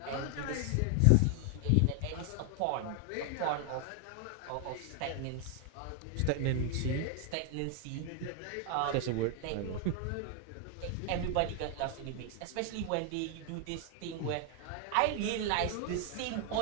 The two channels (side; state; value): both; different; correlation 0.00